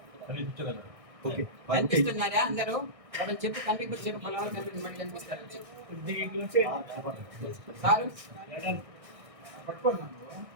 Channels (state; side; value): late; left; 1.6 ms